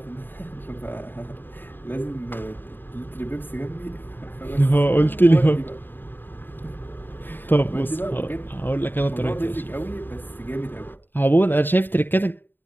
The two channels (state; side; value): late; right; 0.094 ms